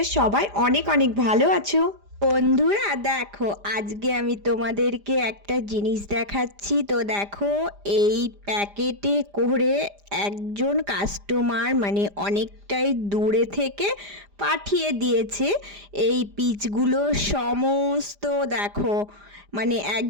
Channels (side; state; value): left; late; 5.0 ms